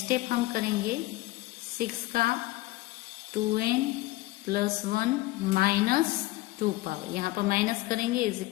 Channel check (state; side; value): quieter; right; 19.2 dB